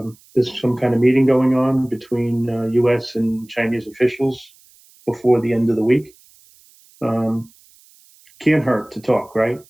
there's some kind of meeting going on between U.S. and Chinese officials before the end of the week. Can't hurt to talk, right?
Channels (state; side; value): noise; right; hiss, 29 dB below the sound